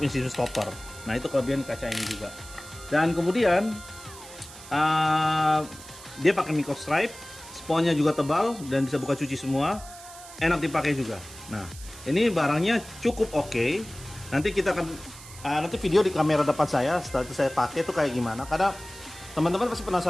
sistem stopper. Nah, itu kelebihan kaca ini juga. Dan kemudian dia pakai micro stripe, sponnya juga tebal dan bisa buka cuci semua. Enak dipakai juga. Nah, ini barangnya cukup oke. Nanti kita akan nanti video di kamera depan saya setelah itu saya pakai itu kayak gimana. Karena teman-teman pasti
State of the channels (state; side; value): noise; right; hiss, 17 dB below the sound